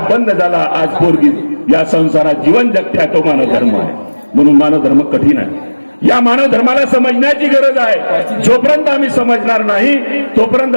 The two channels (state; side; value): inverted; both; correlation -1.00